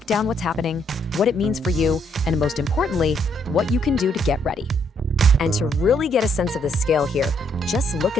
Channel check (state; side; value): normal; both; correlation 0.71